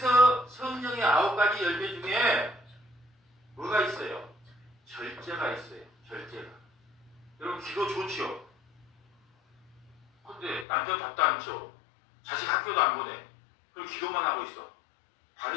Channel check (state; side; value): drops out; right; at 10.7 s